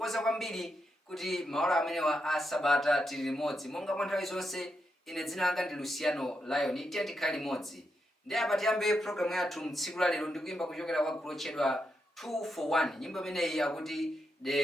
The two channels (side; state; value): both; normal; correlation 0.84